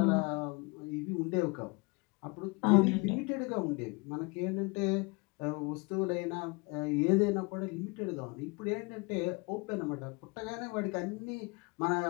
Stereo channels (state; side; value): quieter; right; 28.5 dB